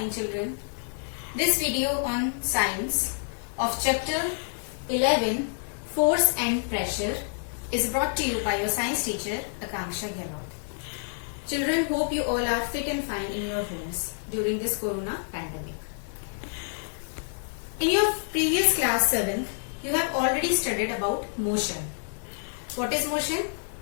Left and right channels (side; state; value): right; silent; digital silence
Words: children. This video on science of chapter 11, Force and Pressure, is brought to you by your science teacher, Akanksha Gehlot. Children, hope you all are fit and fine in your homes during this corona pandemic. In your previous class 7, you have already studied about motion. What is motion?